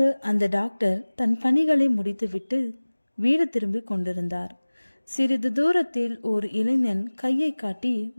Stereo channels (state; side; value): inverted; both; correlation -1.00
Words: அந்த டாக்டர் தன் பணிகளை முடித்துவிட்டு வீடு திரும்பி கொண்டிருந்தார். சிறிது தூரத்தில் ஒரு இளைஞன் கையை காட்டி